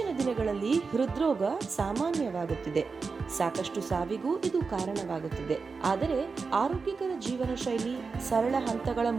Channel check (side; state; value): left; quieter; 4.7 dB